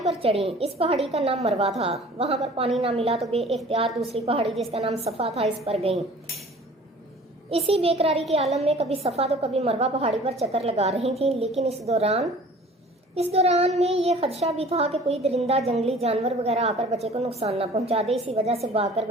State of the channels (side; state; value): both; normal; correlation 0.48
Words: پر چڑھیں۔ اس پہاڑی کا نام مروا تھا۔ وہاں پر پانی نہ ملا تو بے اختیار دوسری پہاڑی جس کا نام صفا تھا اس پر گئیں۔ اسی بے قراری کے عالم میں کبھی صفا تو کبھی مروا پہاڑی پر چکر لگا رہی تھیں، لیکن اس دوران میں یہ خدشہ بھی تھا کہ کوئی درندہ، جنگلی جانور وغیرہ آ کر بچے کو نقصان نہ پہنچا دے۔ اسی وجہ سے بھاگ کر